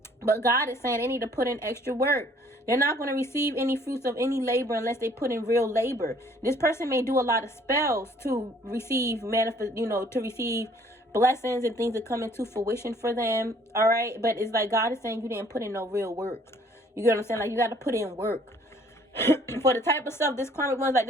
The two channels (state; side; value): normal; both; correlation 0.59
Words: But God is saying they need to put in extra work. They're not going to receive any fruits of any labor unless they put in real labor. This person may do a lot of spells to receive to receive blessings and things that come into fruition for them. All right, but it's like God is saying you didn't put in no real work. You get what I'm saying? Like you got to put in work. For the type of stuff this karmic one's like,